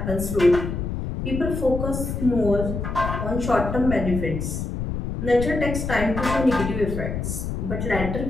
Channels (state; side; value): noise; left; rumble, 4 dB below the sound